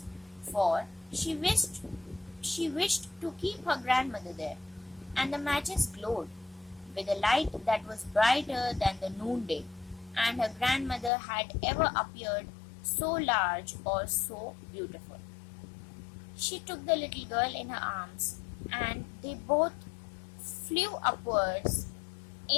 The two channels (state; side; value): drops out; right; at 11.1 s